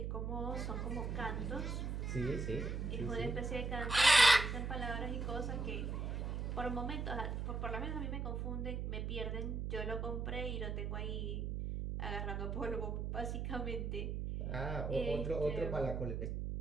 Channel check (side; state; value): right; noise; hum, 2 dB below the sound